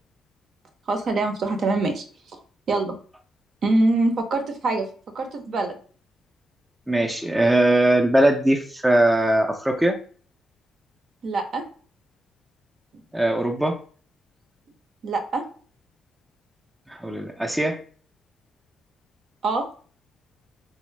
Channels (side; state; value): both; normal; correlation 0.89